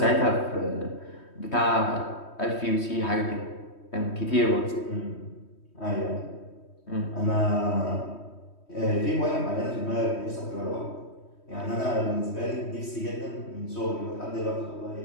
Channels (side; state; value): right; late; 3.2 ms